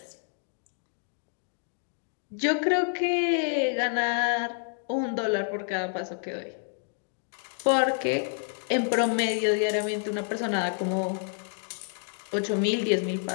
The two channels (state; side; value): silent; right; 59 dB below the other